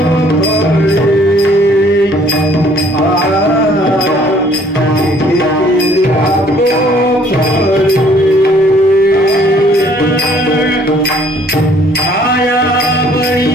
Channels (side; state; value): both; normal; correlation 0.60